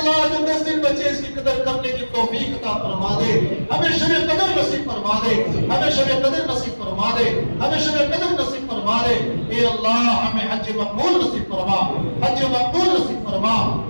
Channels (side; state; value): both; inverted; correlation -1.00